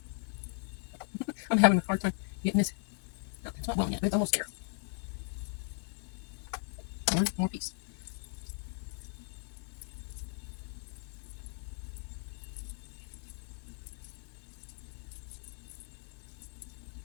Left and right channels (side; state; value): right; silent; 53 dB below the other